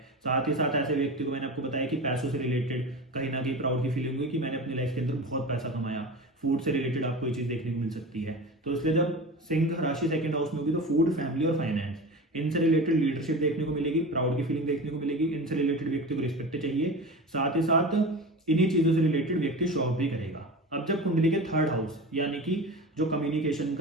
साथ ही साथ ऐसे व्यक्ति को मैंने आपको बताया कि पैसों से रिलेटेड कहीं ना कहीं प्राउड की फीलिंग हुई कि मैंने अपनी लाइफ के अंदर बहुत पैसा कमाया। फूड से रिलेटेड आपको ये चीज देखने को मिल सकती है। तो इसलिए जब सिंह राशि 2nd हाउस में होगी तो फूड, फैमिली और फाइनेंस इनसे रिलेटेड लीडरशिप देखने को मिलेगी, प्राउड की फीलिंग देखने को मिलेगी, इनसे रिलेटेड व्यक्ति को रिस्पेक्ट चाहिए। साथ ही साथ इन्हीं चीजों से रिलेटेड व्यक्ति शो ऑफ भी करेगा। अब जब कुंडली के 3rd हाउस यानी कि जो कम्युनिकेशन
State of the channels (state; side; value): normal; both; correlation 0.30